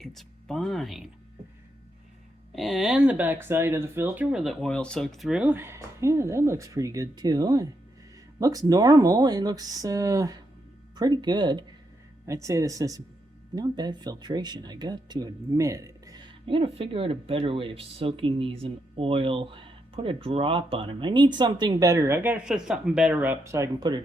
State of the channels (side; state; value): both; normal; correlation 0.81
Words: fine. And the back side of the filter where the oil soaked through, yeah, that looks pretty good too. It looks normal. It looks pretty good. I'd say this is not bad filtration, I got to admit it. I gotta figure out a better way of soaking these in oil. Put a drop on them. I need something better. I gotta set something better up so I can put a